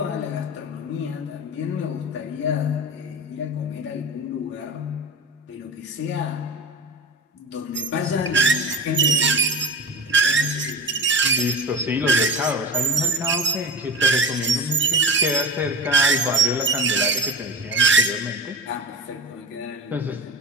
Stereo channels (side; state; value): both; normal; correlation 0.28